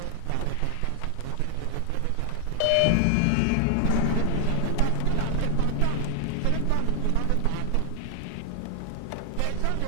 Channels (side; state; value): both; different; correlation 0.00